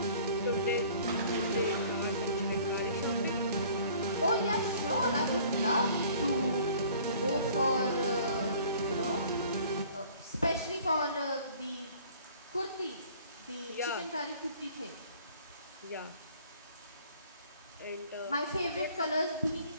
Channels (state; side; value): inverted; both; correlation -0.52